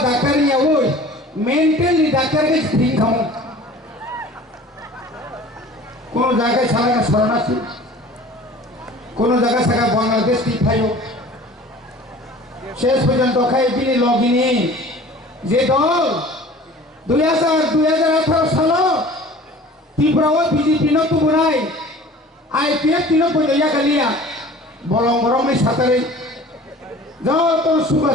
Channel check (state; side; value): normal; both; correlation 0.45